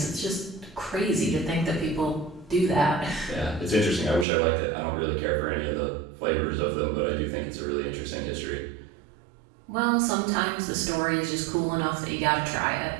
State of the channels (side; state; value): left; drops out; at 4.2 s